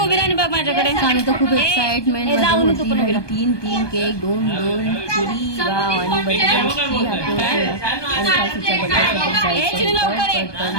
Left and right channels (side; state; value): right; late; 1.2 ms